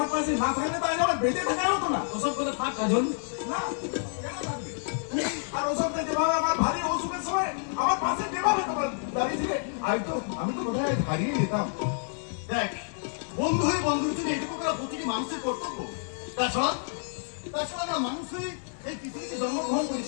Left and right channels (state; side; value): silent; right; 59 dB below the other